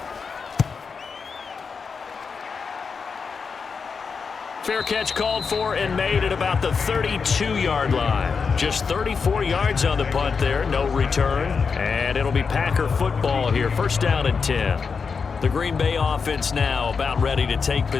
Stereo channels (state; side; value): quieter; right; 5.4 dB